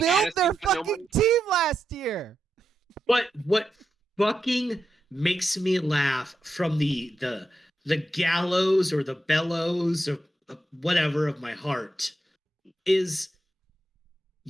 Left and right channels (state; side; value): normal; both; correlation 0.86